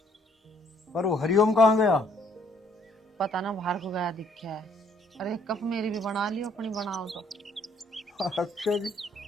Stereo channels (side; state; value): both; normal; correlation 0.65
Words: पर वो हरिओम कहाँ गया? पता ना बाहर को गया दिखा है। अरे एक कप मेरी भी बना लियो, अपनी बनाओ तो। अच्छा जी,